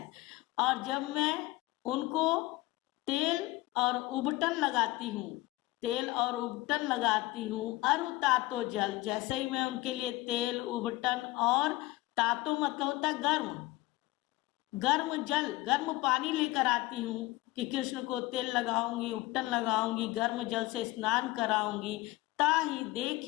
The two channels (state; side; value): quieter; right; 19.4 dB